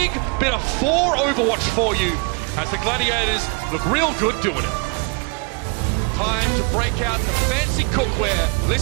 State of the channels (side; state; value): left; quieter; 32.6 dB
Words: bit of 4 Overwatch for you as the Gladiators look real good doing it. Time to break out the fancy cookware.